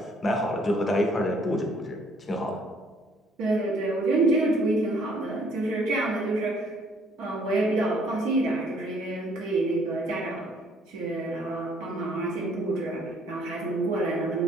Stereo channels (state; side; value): normal; both; correlation 0.62